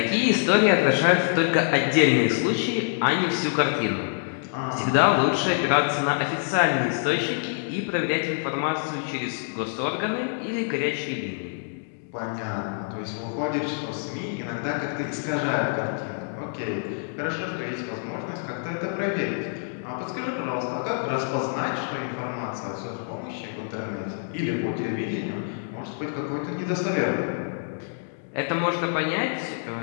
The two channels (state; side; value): silent; right; digital silence